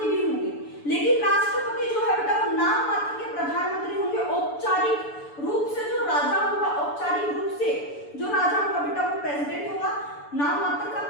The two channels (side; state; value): right; late; 6.9 ms